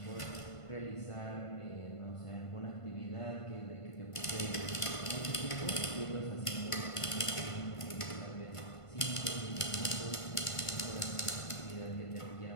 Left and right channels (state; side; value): late; right; 1.5 ms